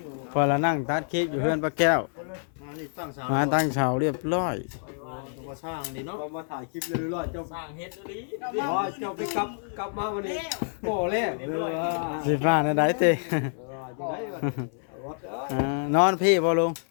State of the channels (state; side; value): silent; right; 60 dB below the other